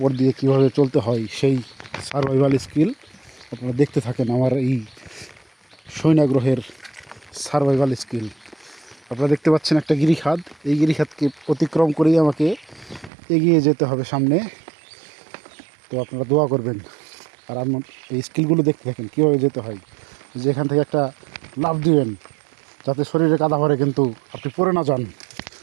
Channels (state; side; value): drops out; left; at 13.1 s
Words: দিয়ে কীভাবে চলতে হয় সেই সার্ভাইভাল স্কিল আপনারা দেখতে থাকেন। আমার এই সৈনা গ্রহের সার্ভাইভাল স্কিল আপনারা দেখতে পাচ্ছেন। একটা গিরিখাদ, এই গিরিখাদকে অতিক্রম করেই আমাকে এগিয়ে যেতে হবে সামনে। তো আপনারা দোয়া করবেন আর আমার এই স্কিলগুলো দেখতে থাকেন কীভাবে যেতে হয়। যে এখান থেকে একটা লাফ দিবেন যাতে শরীরে কাদা ভরে কিন্তু আপনি পড়ে না যান।